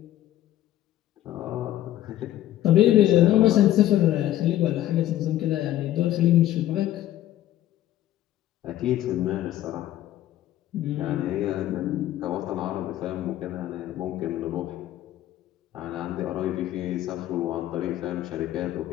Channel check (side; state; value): right; quieter; 13.4 dB